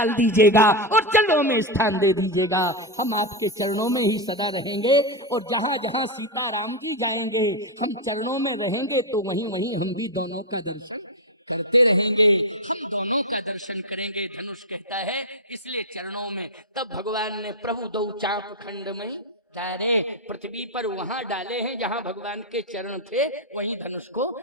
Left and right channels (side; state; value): both; normal; correlation 0.05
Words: दीजिएगा और चरणों में स्थान दे दीजिएगा। हम आपके चरणों में ही सदा रहेंगे और जहां जहां सीता राम जी जाएंगे हम चरणों में रहेंगे, तो वहीं वहीं हम भी दोनों का दर्शन करते रहेंगे, हम दोनों का दर्शन करेंगे। धनुष कहता है इसलिए चरणों में। तब भगवान ने प्रभु दो चाप खंड में तारे पृथ्वी पर वहां डाले हैं जहां भगवान के चरण थे, वहीं धनुष को